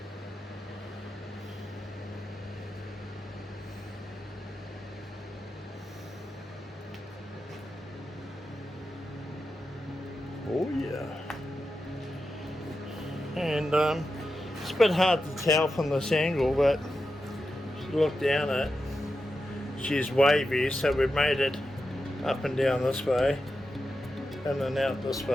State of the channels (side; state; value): both; normal; correlation 0.90